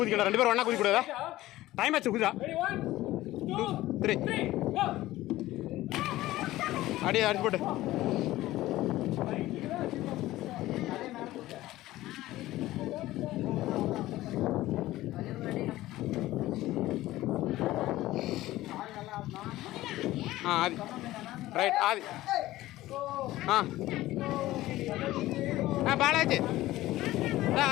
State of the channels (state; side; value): quieter; right; 16.4 dB